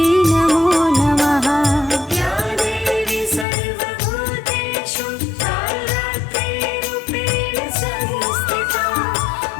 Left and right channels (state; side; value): drops out; right; at 3.5 s